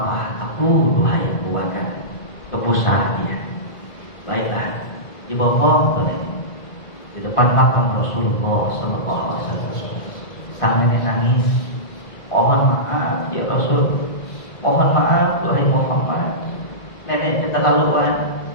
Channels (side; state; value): right; late; 1.9 ms